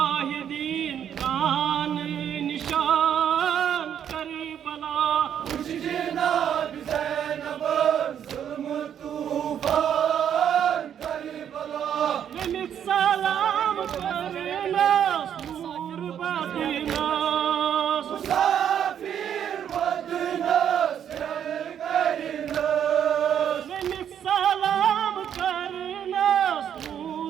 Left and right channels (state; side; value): quieter; left; 9.2 dB